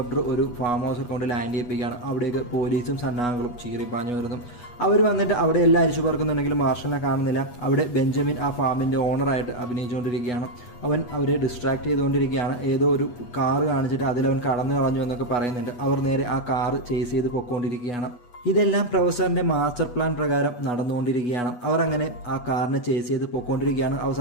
ഒരു ഫാം ഹൗസിൽ കൊണ്ട് ലാൻഡ് ചെയ്യിപ്പിക്കുകയാണ്. അവിടേക്ക് പോലീസും സന്നാഹങ്ങളും ചീറിപ്പാഞ്ഞു വരുന്നു. അവർ വന്നിട്ട് അവിടെ എല്ലാം അരിച്ചു പറക്കുന്നുണ്ടെങ്കിലും മാർഷലിനെ കാണുന്നില്ല. അവിടെ ബെഞ്ചമിൻ ആ ഫാമിൻ്റെ ഓണറായിട്ട് അഭിനയിച്ചുകൊണ്ടിരിക്കുകയാണ്. അവൻ അവരെ ഡിസ്ട്രാക്ട് ചെയ്തുകൊണ്ടിരിക്കുകയാണ്. ഏതോ ഒരു കാറ് കാണിച്ചിട്ട് അതിലവൻ കടന്നു കളഞ്ഞു എന്നൊക്കെ പറയുന്നുണ്ട്. അവർ നേരെ ആ കാറ് ചേസ് ചെയ്ത് പൊയ്ക്കൊണ്ടിരിക്കുകയാണ്. ഇതെല്ലാം പ്രൊഫസറിന്റെ മാസ്റ്റർ പ്ലാൻ പ്രകാരം നടന്നുകൊണ്ടിരിക്കുകയാണ്. അവർ അങ്ങനെ ആ കാറിനെ ചേസ് ചെയ്ത് പോയിക്കൊണ്ടിരിക്കുകയാണ്.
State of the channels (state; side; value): late; right; 8.2 ms